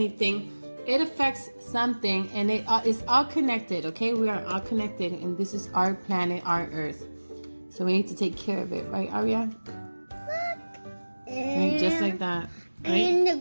it affects something, and it is all connected, okay? We are all connected, and this is our planet, our earth. So we need to take care of it, right, Aria? Look. Right, just like that, right? And the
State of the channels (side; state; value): both; inverted; correlation -1.00